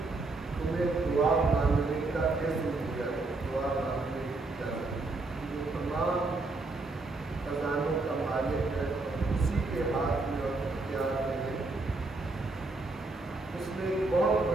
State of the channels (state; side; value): quieter; left; 3.3 dB